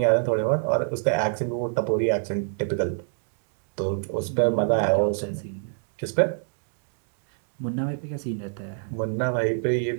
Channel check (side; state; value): left; silent; digital silence